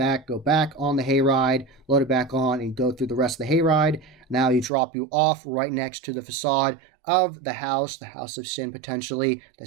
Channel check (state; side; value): drops out; left; at 4.7 s